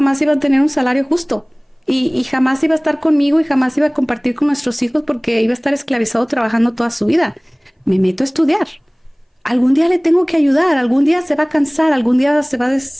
iba a tener un salario justo. Y jamás iba a estar conmigo y jamás iba a compartir con nuestros hijos porque iba a estar esclavizado trabajando toda su vida. Me meto a estudiar. Algún día le tengo que ayudar, algún día se va a cansar, algún día se va a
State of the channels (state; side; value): identical; both; correlation 1.00